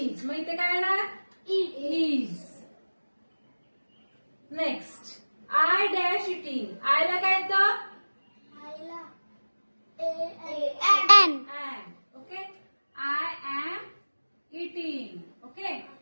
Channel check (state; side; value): inverted; both; correlation -1.00